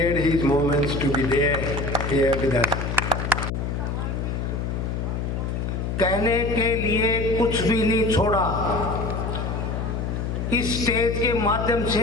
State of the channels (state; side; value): noise; left; hum, 2 dB below the sound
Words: his moments to be there here with us. कहने के लिए कुछ भी नहीं छोड़ा। इस stage के माध्यम